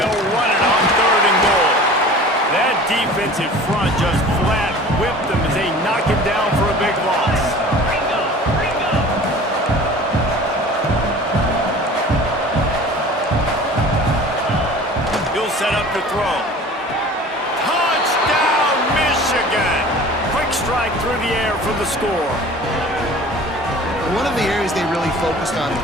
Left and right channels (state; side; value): normal; both; correlation 0.43